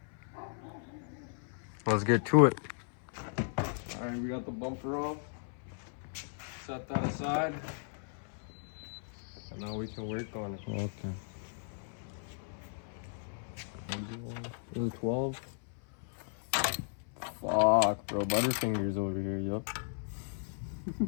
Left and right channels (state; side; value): silent; right; 54 dB below the other